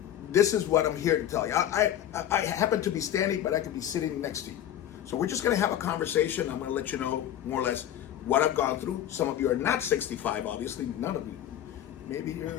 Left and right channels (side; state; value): right; quieter; 11.2 dB